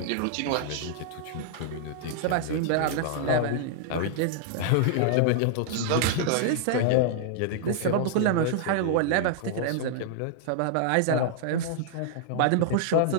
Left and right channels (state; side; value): different; both; correlation -0.01